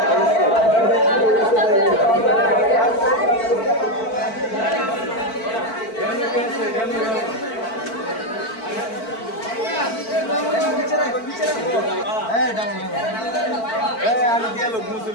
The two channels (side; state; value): right; late; 4.5 ms